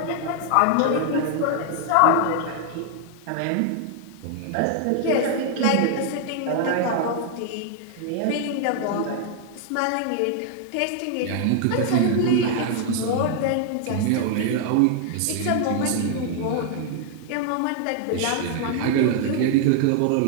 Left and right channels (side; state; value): both; different; correlation 0.00